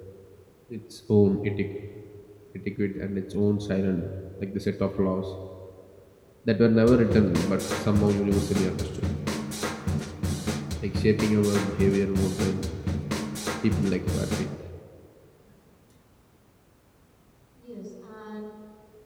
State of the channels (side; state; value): both; identical; correlation 1.00